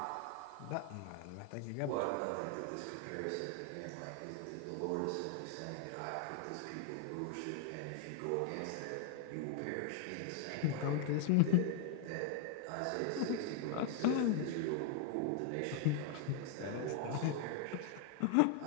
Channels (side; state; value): both; different; correlation 0.00